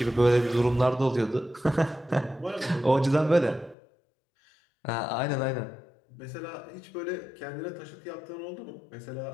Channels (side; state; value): right; drops out; at 3.8 s